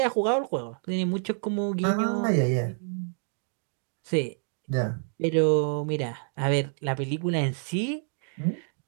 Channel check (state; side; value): silent; left; 59 dB below the other